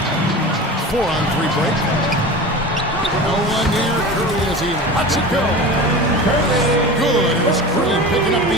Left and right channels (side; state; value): both; normal; correlation 0.32